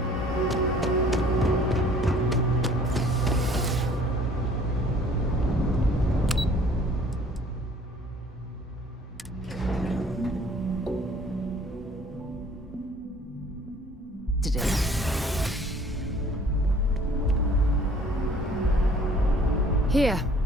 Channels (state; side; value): normal; both; correlation 0.54